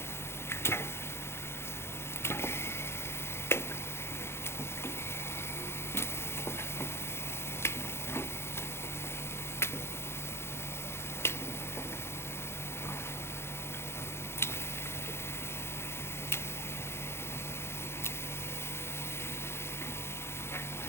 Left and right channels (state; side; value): late; right; 0.12 ms